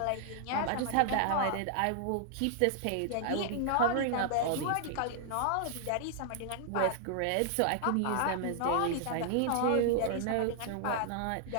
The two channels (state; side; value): different; both; correlation 0.00